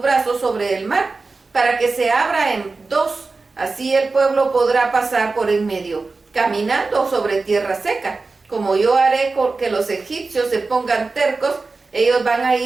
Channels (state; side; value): quieter; left; 3.9 dB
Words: sobre el mar, para que se abra en dos. Así el pueblo podrá pasar por en medio, caminando sobre tierra seca. Como yo haré que los egipcios se pongan tercos, ellos van a